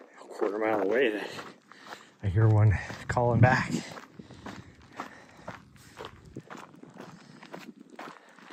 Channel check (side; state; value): both; identical; correlation 1.00